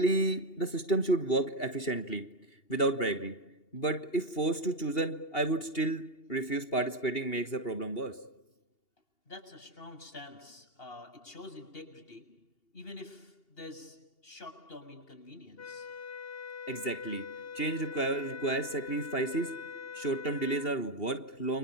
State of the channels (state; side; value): late; right; 2.8 ms